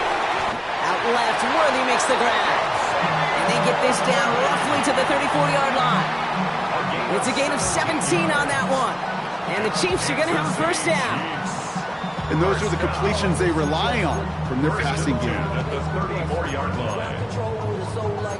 Out left, Worthy makes the grab. And they get this down roughly to the 34-yard line. It's a gain of 17 on that one. And the Chiefs are going to have a first down. And those are the completions they rely on from their passing game. At the 34-yard line.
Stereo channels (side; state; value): both; identical; correlation 1.00